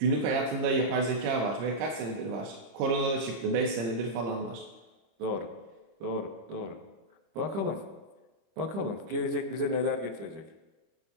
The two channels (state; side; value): late; left; 25 ms